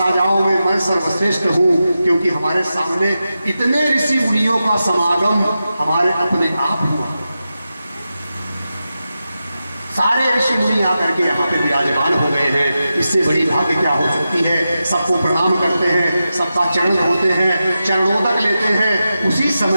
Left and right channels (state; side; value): inverted; both; correlation -0.91